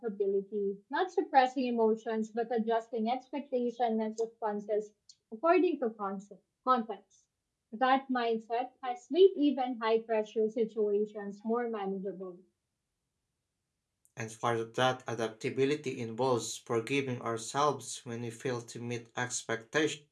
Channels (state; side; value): identical; both; correlation 1.00